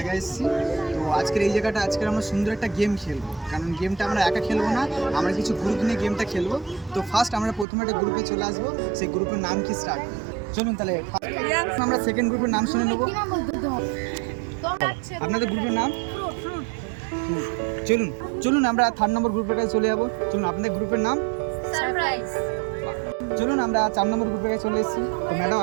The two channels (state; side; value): drops out; left; at 7.7 s